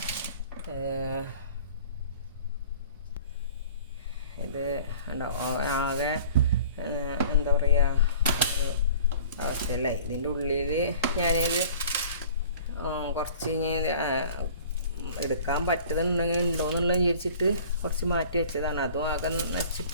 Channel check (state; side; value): inverted; both; correlation -0.46